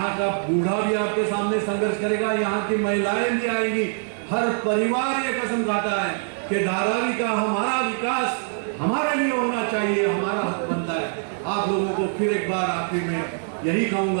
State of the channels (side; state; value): left; silent; 63 dB below the other